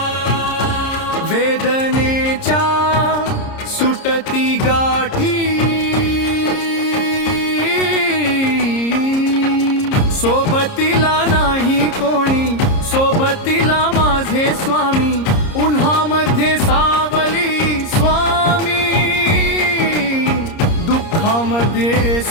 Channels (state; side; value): late; right; 30 ms